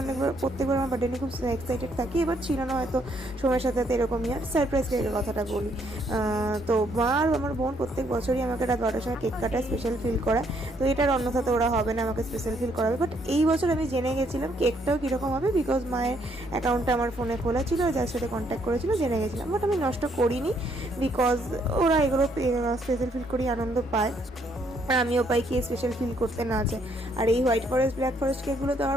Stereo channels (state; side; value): normal; both; correlation 0.70